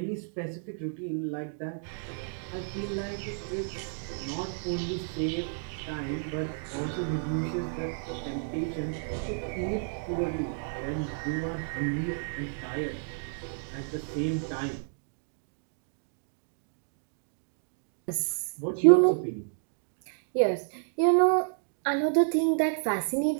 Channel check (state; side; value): silent; left; digital silence